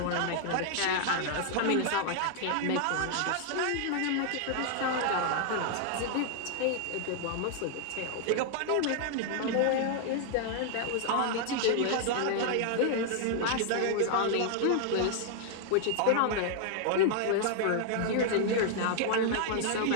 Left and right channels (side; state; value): both; different; correlation 0.00